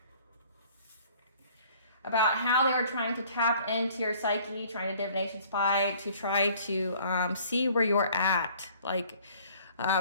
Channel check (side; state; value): both; inverted; correlation -0.55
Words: how they were trying to tap into your psyche, trying to divination spy, to try to see where you're at. Like,